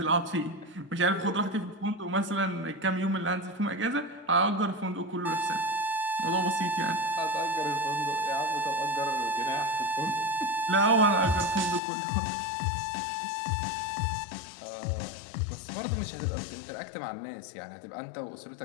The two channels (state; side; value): drops out; right; at 11.8 s